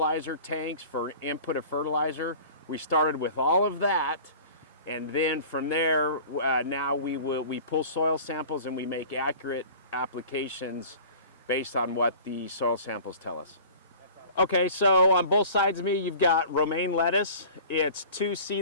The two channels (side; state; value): both; inverted; correlation -0.43